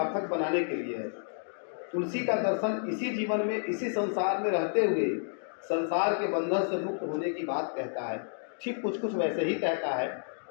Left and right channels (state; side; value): silent; right; digital silence